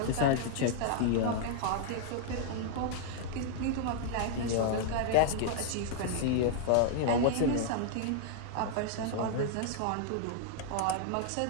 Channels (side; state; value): both; different; correlation -0.01